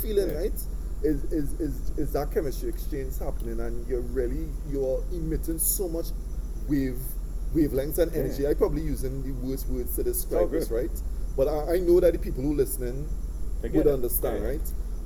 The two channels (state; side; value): identical; both; correlation 1.00